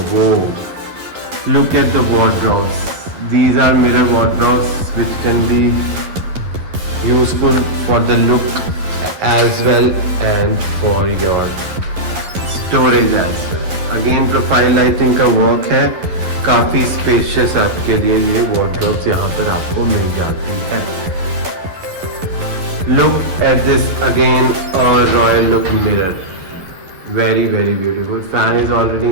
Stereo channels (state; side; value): late; left; 11 ms